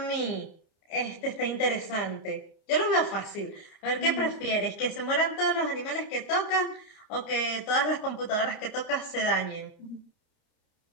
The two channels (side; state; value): right; late; 29 ms